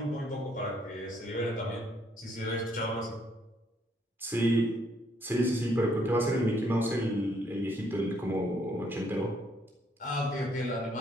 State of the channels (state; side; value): normal; both; correlation 0.69